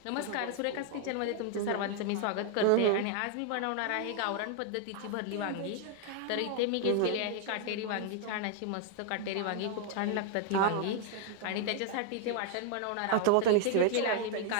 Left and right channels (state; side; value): different; both; correlation 0.00